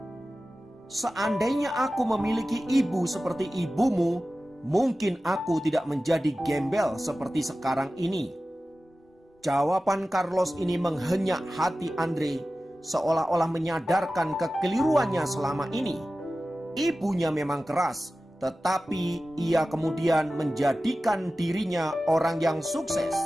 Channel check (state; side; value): normal; both; correlation 0.95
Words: Seandainya aku memiliki ibu seperti ibumu, mungkin aku tidak menjadi gembel seperti sekarang ini." Jawaban Carlos ini menghenyak hati Andre, seolah-olah menyadarkan kekeliruannya selama ini. Ibunya memang keras, tetapi ia kemudian menjadikan dirinya orang yang sukses.